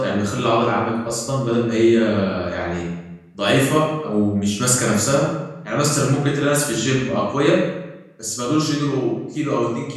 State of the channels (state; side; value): identical; both; correlation 1.00